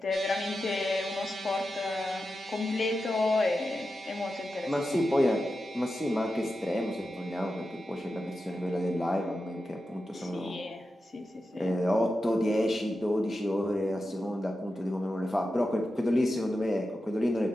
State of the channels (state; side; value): normal; both; correlation 0.91